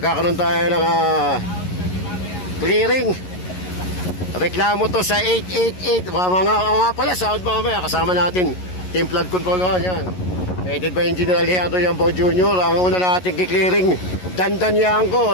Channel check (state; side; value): late; right; 11 ms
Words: tayo ng clearing. Reklamo to sa 888. Mga pala, sahod mamaya. Kasama natin. Team Flood Control 1. Yan. Headed by Engineer Alejandro Yambo Jr. Ang una natin kiklearing. Dandan Yanko.